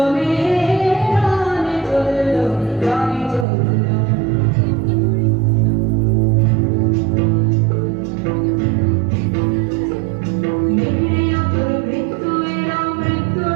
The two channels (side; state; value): left; drops out; at 3.5 s